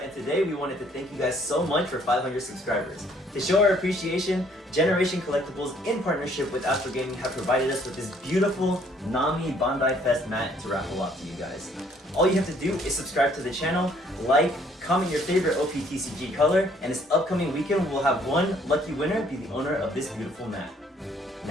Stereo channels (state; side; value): normal; both; correlation 0.63